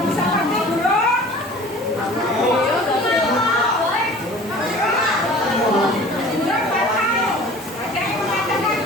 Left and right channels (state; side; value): normal; both; correlation 0.44